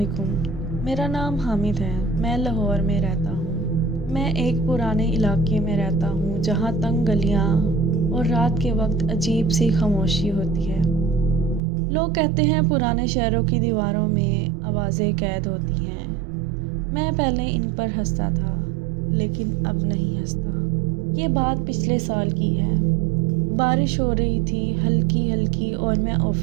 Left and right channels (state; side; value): drops out; left; at 11.6 s